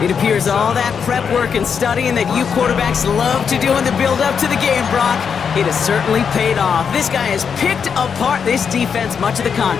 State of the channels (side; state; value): right; quieter; 6.7 dB